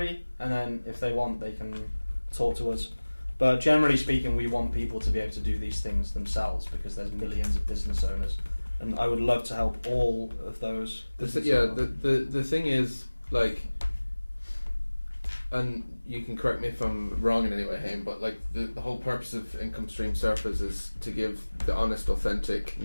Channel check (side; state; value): both; inverted; correlation -1.00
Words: and then if they want, they can talk to us. But generally speaking, we want people to be able to do these things themselves because there's millions of business owners, and I would love to help all of those. The thing is, like, and you can correct me if I'm wrong in any way, Haim, but like the whole purpose of Income Stream Surfers is to give the honest, authentic,